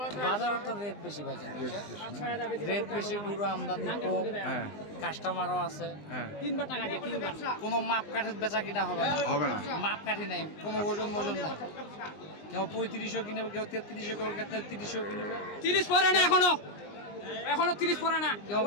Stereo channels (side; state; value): right; late; 20 ms